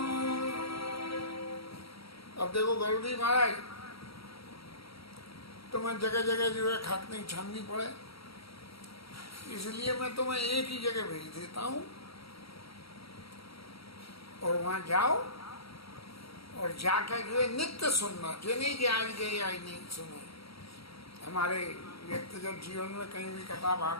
अब देखो गरुड़ी महाराज, तुम्हें जगह जगह जो है खाकनी छाननी पड़े, इसलिए मैं तुम्हें एक ही जगह भेज देता हूं और वहां जाओ और जाकर जो है नित्य सुनना। जो नहीं कि आज गए आज नहीं सुने। हमारे व्यक्तिगत जीवन में कहीं भी कथा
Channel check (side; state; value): right; late; 0.76 ms